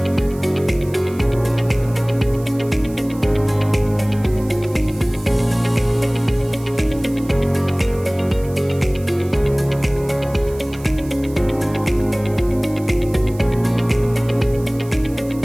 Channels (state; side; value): noise; right; hiss, 21 dB below the sound